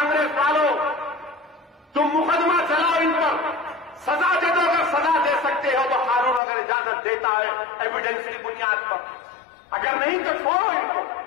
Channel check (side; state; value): right; drops out; at 6.4 s